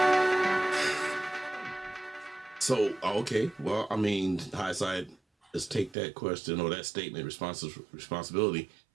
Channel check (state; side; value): drops out; left; at 6.0 s